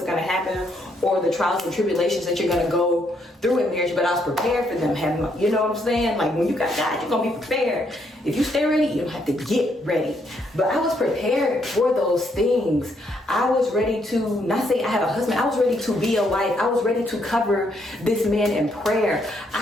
gonna happen or the trials and tribulations that you're gonna go through in marriage, but I was prepared for them. You know what I'm saying? Like when you got God, you're gonna be prepared. If you stay ready, you don't have to get ready. But I was prepared for those things. I was ready to, not say I had a husband, I was ready to be a wife. I was ready to cover this man in prayer.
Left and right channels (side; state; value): both; normal; correlation 0.73